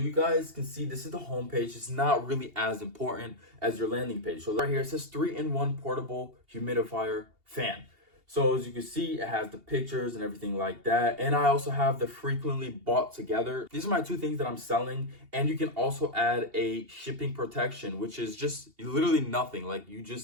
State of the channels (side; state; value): left; late; 2.8 ms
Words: guys can see this is the home page. It's not really as important as your landing page. So right here it says 3-in-1 portable humidifier fan. So as you can see, it has the pictures and everything like that. And I also have the frequently bought together. These are my two things that I'm selling. And you can also add a shipping protection, which is just literally nothing. Like you